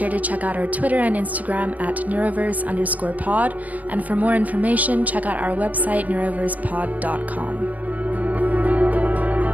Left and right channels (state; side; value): late; left; 0.076 ms